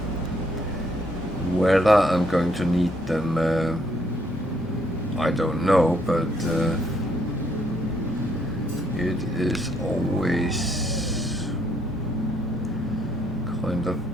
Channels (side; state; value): both; normal; correlation 0.70